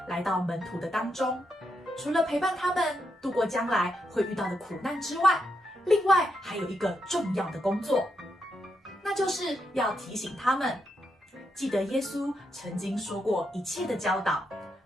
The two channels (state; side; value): normal; both; correlation 0.81